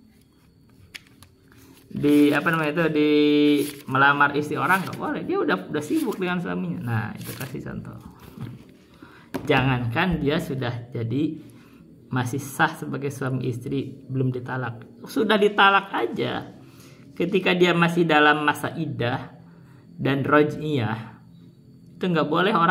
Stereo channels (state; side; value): identical; both; correlation 1.00